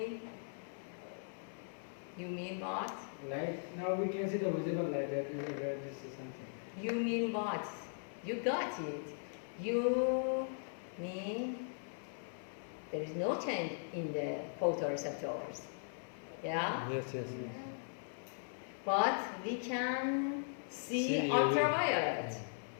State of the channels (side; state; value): right; silent; 52 dB below the other